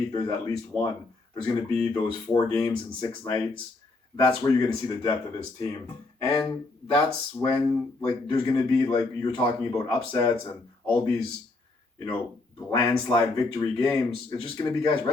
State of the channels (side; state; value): right; quieter; 3.3 dB